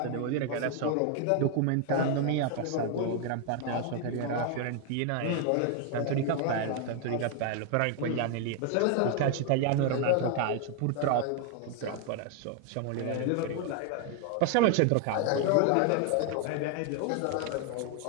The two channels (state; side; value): different; both; correlation 0.00